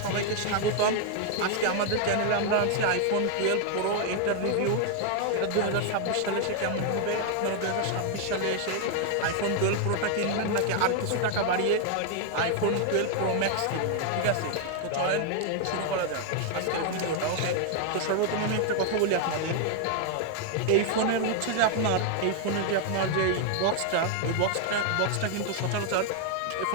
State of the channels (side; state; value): both; different; correlation 0.00